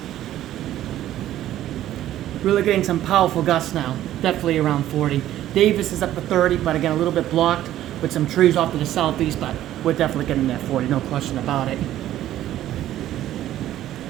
Really getting some powerful gusts now. Definitely around 40. Davis is up to 30, but again, a little bit blocked with some trees off to the southeast, but we're definitely getting that 40, no question about it.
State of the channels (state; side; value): quieter; left; 13.0 dB